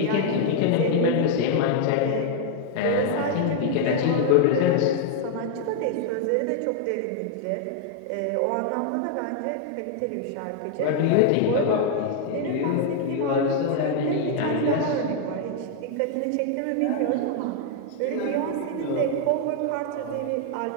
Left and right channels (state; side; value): different; both; correlation 0.00